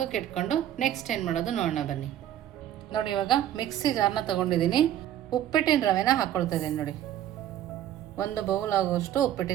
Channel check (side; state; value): left; quieter; 11.7 dB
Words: ಇಟ್ಕೊಂಡು ನೆಕ್ಸ್ಟ್ ಏನು ಮಾಡೋದು ನೋಡೋಣ ಬನ್ನಿ. ನೋಡಿ, ಇವಾಗ ಮಿಕ್ಸಿ ಜಾರ್ನ ತೊಗೊಂಡಿದ್ದೀನಿ. ಉಪ್ಪಿಟ್ಟಿನ ರವೆನ ಹಾಕ್ಕೊಳ್ತಾ ಇದ್ದೀನಿ. ನೋಡಿ, 1 ಬೌಲ್ ಆಗುವಷ್ಟು